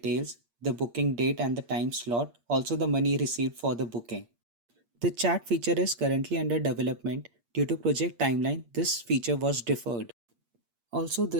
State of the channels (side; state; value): left; late; 8.6 ms